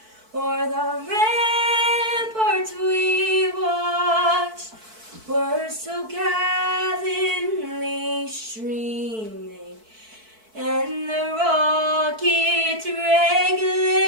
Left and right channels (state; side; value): late; left; 4.6 ms